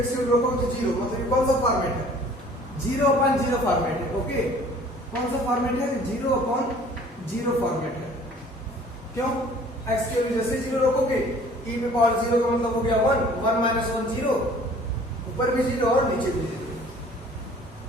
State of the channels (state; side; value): normal; both; correlation 0.51